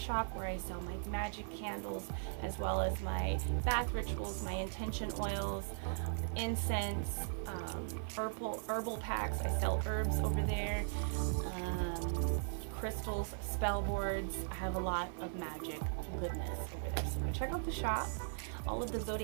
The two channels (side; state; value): left; silent; 52 dB below the other